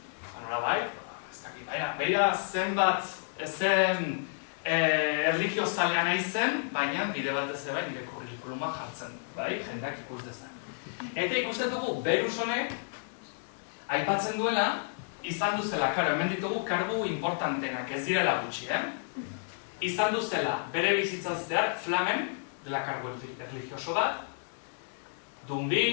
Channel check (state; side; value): silent; right; digital silence